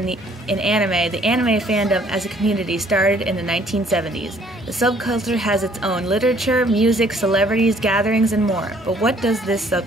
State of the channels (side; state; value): both; normal; correlation 0.61